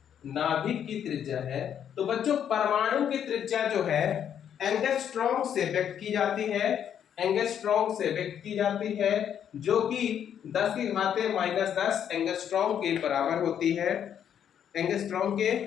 नाभिक की त्रिज्या है, तो बच्चों परमाणु की त्रिज्या जो है एंगस्ट्रॉम से व्यक्त की जाती है, एंगस्ट्रॉम से व्यक्त की जाती है, जो कि 10⁻⁻10 एंगस्ट्रॉम के बराबर होती है। एंगस्ट्रॉम के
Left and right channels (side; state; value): right; quieter; 9.1 dB